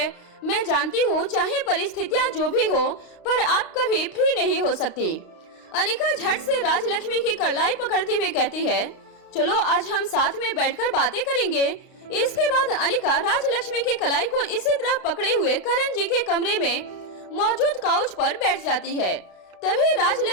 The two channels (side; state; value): right; late; 32 ms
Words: मैं जानती हूँ चाहे परिस्थितियाँ जो भी हो, पर आप कभी फ्री नहीं हो सकती। अनिका झट से राजलक्ष्मी की कलाई पकड़ते हुए कहती है, चलो आज हम साथ में बैठकर बातें करेंगे। इसके बाद अनिका राजलक्ष्मी की कलाई को इसी तरह पकड़े हुए करण जी के कमरे में मौजूद काउच पर बैठ जाती है। तभी